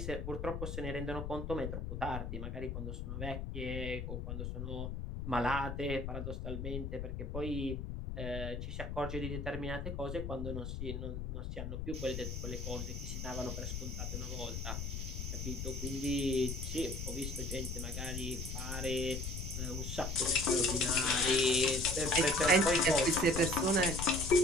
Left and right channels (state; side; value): noise; left; rumble, 4 dB below the sound